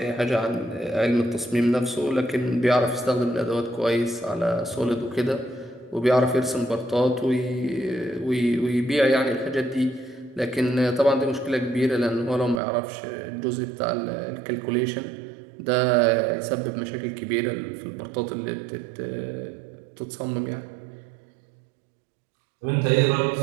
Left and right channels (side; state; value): left; drops out; at 12.6 s